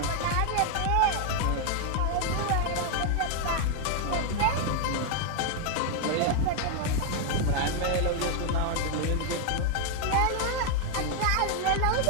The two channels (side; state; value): both; different; correlation 0.00